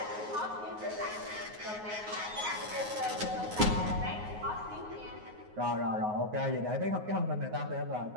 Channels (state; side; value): late; left; 9.5 ms